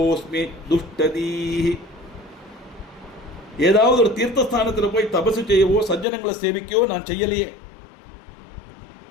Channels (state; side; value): drops out; right; at 6.1 s